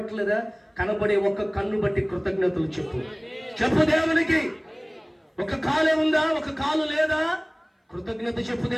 కనబడే ఒక కన్ను బట్టి కృతజ్ఞతలు చెప్పు దేవునికి. ఒక కాలే ఉందా, ఒక కాలు లేదా? కృతజ్ఞత చెప్పు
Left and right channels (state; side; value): identical; both; correlation 1.00